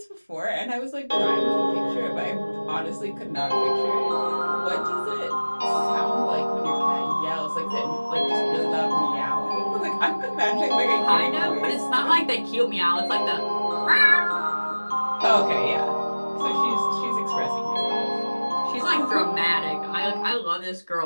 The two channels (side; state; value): both; inverted; correlation -1.00